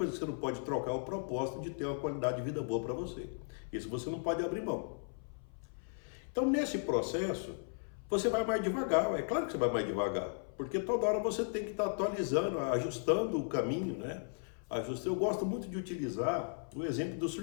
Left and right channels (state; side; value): silent; right; 54 dB below the other